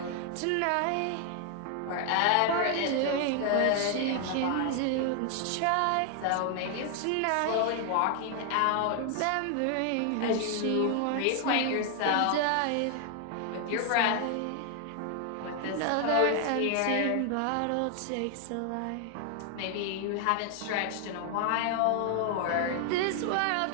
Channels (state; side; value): different; both; correlation 0.00